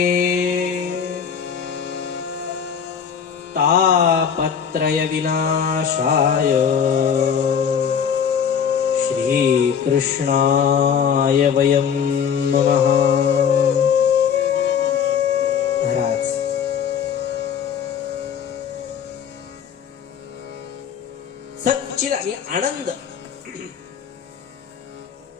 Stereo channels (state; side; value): quieter; right; 7.5 dB